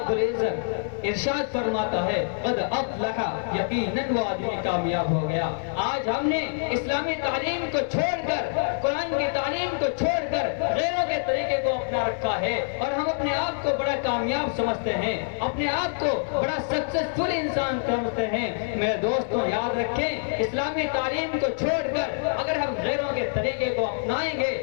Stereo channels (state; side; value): silent; right; digital silence